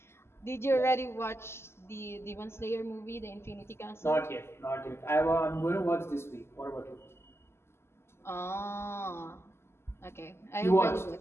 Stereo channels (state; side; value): late; right; 0.12 ms